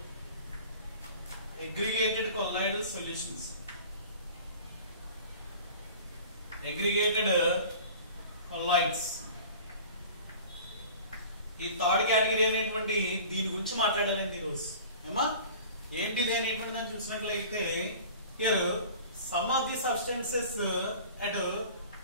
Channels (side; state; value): both; inverted; correlation -0.42